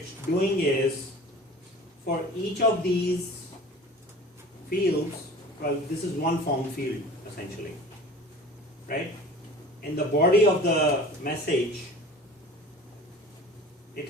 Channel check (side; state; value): both; normal; correlation 0.42